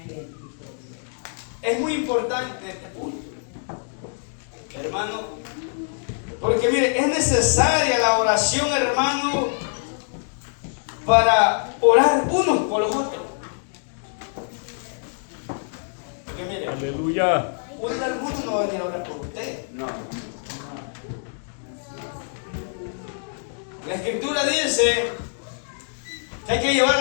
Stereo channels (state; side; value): silent; right; digital silence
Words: Es muy importante este punto, hermano, porque mire, es necesaria la oración, hermano, para orar unos por los otros. Porque mire, Aleluya. alguno no va a venir a orar por usted. No. La Escritura dice que hay que llevar